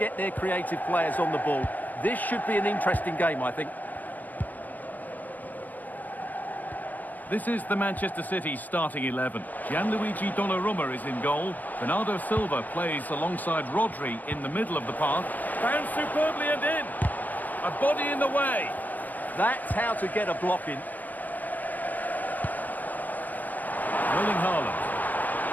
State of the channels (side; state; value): right; late; 0.082 ms